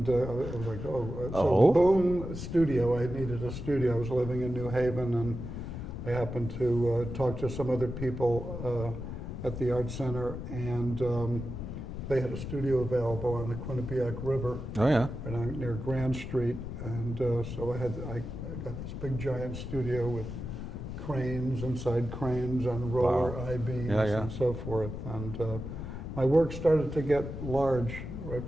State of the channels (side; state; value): left; noise; rumble, 7 dB below the sound